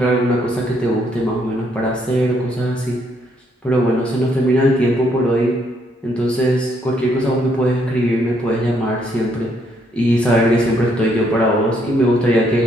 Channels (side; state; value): both; normal; correlation 0.71